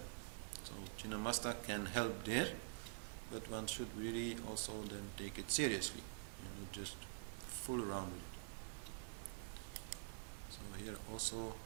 So Chinnamasta can help there, but one should really also then take it seriously, not just fool around with it. So here also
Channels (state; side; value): silent; left; digital silence